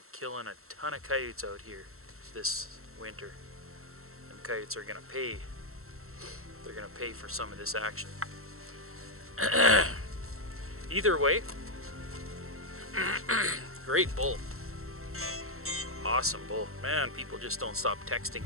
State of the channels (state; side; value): late; left; 0.63 ms